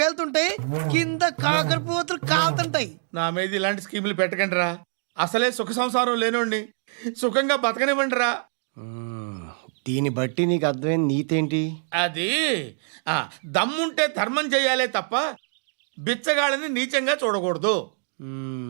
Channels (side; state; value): left; silent; 62 dB below the other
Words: కింద కాకరపువ్వతులు కాలుతుంటాయి. నా మీద ఇలాంటి స్కీములు పెట్టకండి రా. అసలే సుఖ సంసారం లేనోడిని సుఖంగా బతకనివ్వండి రా. దీన్ని బట్టి నీకు అర్థమైన నీతేంటి? అది దమ్ముంటే ధర్మం చెయ్యాలే తప్ప బిచ్చగాళ్ళని నీచంగా చూడకూడదు.